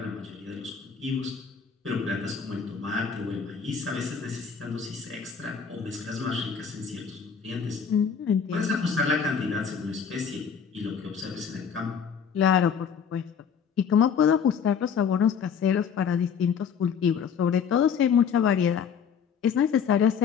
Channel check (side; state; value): right; quieter; 6.9 dB